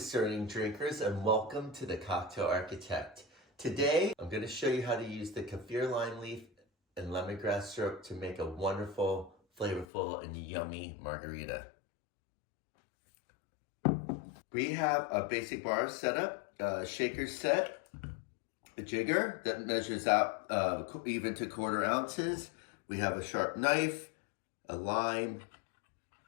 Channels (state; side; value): drops out; right; at 9.9 s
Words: drinkers, and welcome to the Cocktail Architect. Today, I'm going to show you how to use the Keffir lime leaf and lemongrass syrup to make a wonderful, flavorful, and yummy margarita. We have a basic bar set up, a shaker set, a jigger that measures out even to 1/4 ounces. We have a sharp knife, a lime,